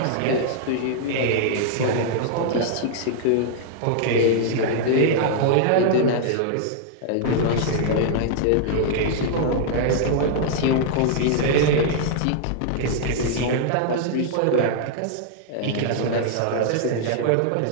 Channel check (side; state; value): both; different; correlation -0.01